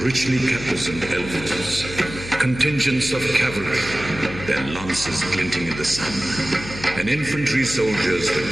richly caparisoned elephants. Contingents of cavalry, their lances glinting in the sun, and infantry soldiers with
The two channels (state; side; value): noise; left; hum, 11 dB below the sound